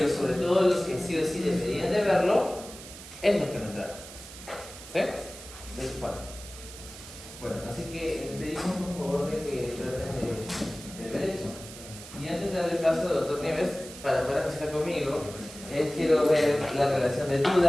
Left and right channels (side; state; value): right; noise; hiss, 15 dB below the sound